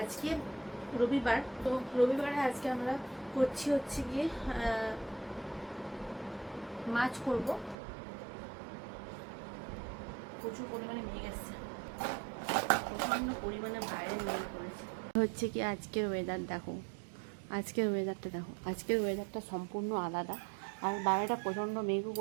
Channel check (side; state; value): left; drops out; at 7.8 s